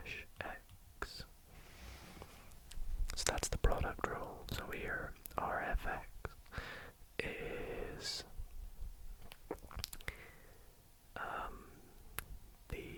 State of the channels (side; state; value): both; identical; correlation 1.00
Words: x. So that's the product rule. So here our fx is